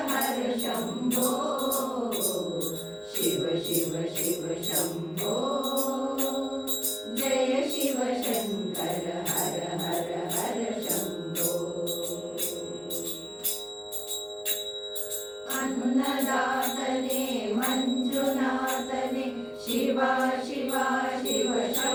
ಹರ ಶಂಭೋ. ಶಿವ ಶಿವ ಶಿವ ಶಂಭೋ ಜಯ ಶಿವ ಶಂಕರ ಹರ ಹರ ಹರ ಶಂಭೋ. ಅನ್ನದಾತನೇ ಮಂಜುನಾಥನೇ ಶಿವ ಶಿವ ಶಿವ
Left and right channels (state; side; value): identical; both; correlation 1.00